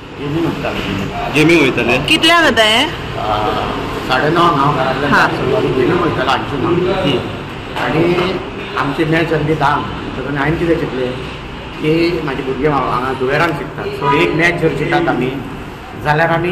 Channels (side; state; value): both; identical; correlation 1.00